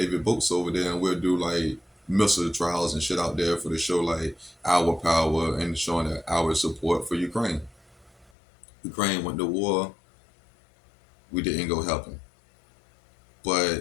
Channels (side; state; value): right; drops out; at 8.3 s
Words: boats over there, and we'll do like missile trials and shit out there for to show like our power and showing that our support for Ukraine. Ukraine went to war. We didn't go help them,